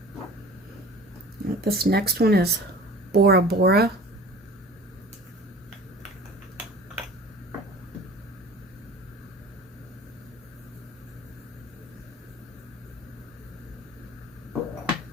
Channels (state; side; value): normal; both; correlation 0.43